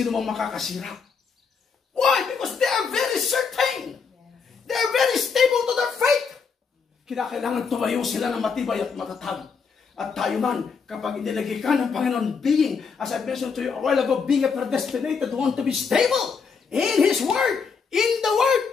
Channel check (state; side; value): quieter; right; 5.6 dB